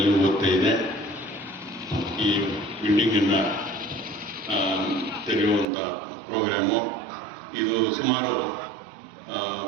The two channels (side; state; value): left; drops out; at 5.7 s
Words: ಗೊತ್ತೇ ಇದೆ. ಈ ಬಿಲ್ಡಿಂಗನ್ನು ತೆರೆಯುವಂಥ ಪ್ರೋಗ್ರಾಮು ಇದು ಸುಮಾರು